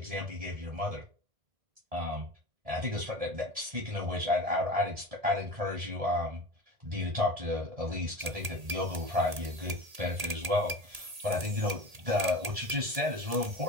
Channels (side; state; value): left; late; 1.8 ms